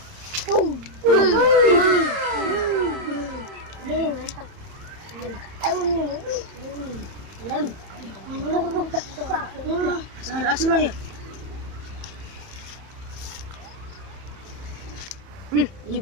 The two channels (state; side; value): late; left; 31 ms